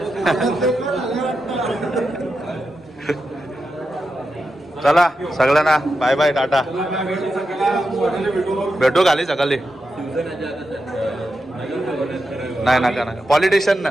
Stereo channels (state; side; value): normal; both; correlation 0.88